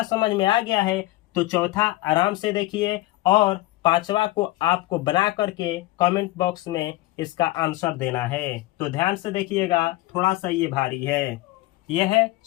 समझ में आ गया है, तो चौथा आराम से देखिए, और पांचवा को आपको बना करके कमेंट बॉक्स में इसका आंसर देना है। तो ध्यान से देखिएगा, थोड़ा सा ये भारी है। यह है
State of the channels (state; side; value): quieter; right; 18.0 dB